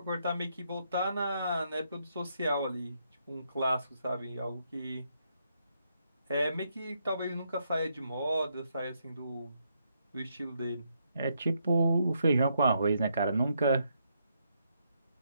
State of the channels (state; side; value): inverted; both; correlation -0.77